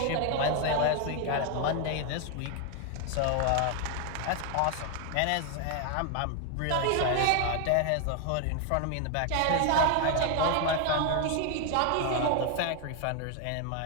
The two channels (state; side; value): different; both; correlation 0.01